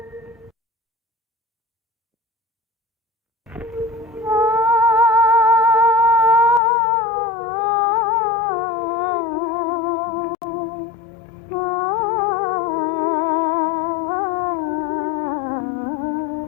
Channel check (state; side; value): drops out; right; at 6.6 s